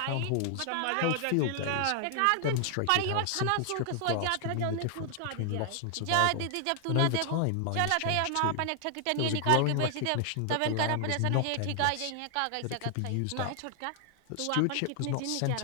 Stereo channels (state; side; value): different; both; correlation 0.00